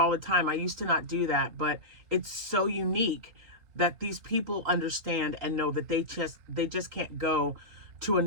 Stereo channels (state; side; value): late; left; 3.8 ms